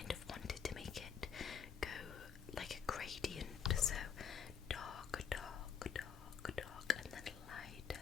of wanted to make it go like a gradient, so dark, and then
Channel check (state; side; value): quieter; right; 7.3 dB